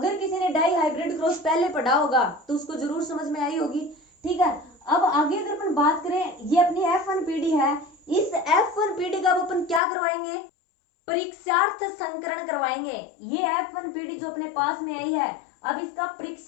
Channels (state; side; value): drops out; right; at 9.8 s